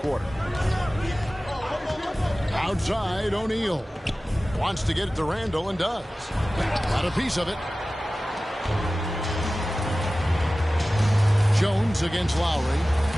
Outside, O'Neal. Wants to get it to Randle and does. Got a piece of it. Jones against Lowry.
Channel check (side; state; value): both; normal; correlation 0.96